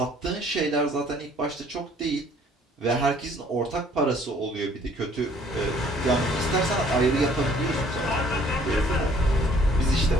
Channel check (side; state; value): both; normal; correlation 0.59